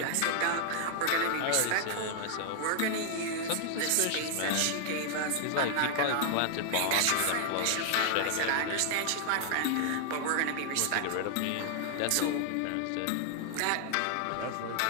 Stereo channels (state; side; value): different; both; correlation 0.00